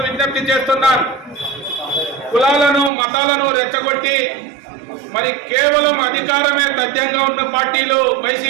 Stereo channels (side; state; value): left; drops out; at 2.9 s